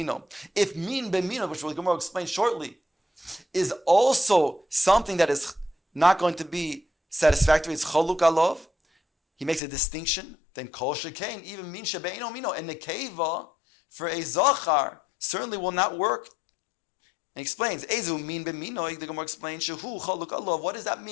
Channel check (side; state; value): right; drops out; at 9.6 s